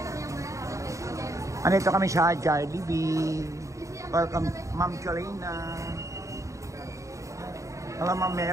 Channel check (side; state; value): left; late; 0.15 ms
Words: Andito kami sa Jollibee. Welcome, Ma'am Cholina. Hello, Ma'am